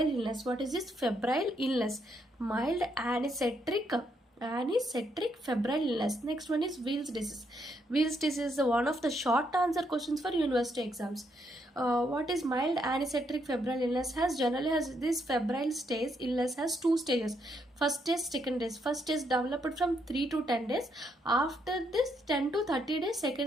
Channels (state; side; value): normal; both; correlation 0.75